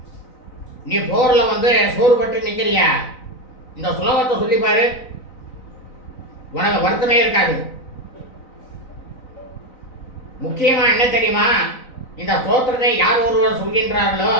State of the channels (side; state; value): right; late; 3.9 ms